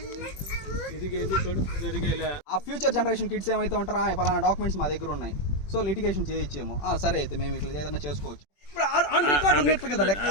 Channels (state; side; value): late; right; 21 ms